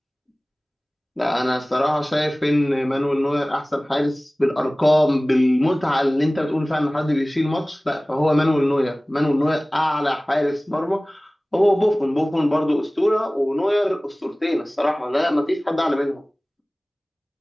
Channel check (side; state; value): both; normal; correlation 0.98